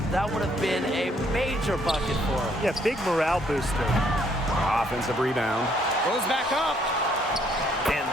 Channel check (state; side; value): normal; both; correlation 0.67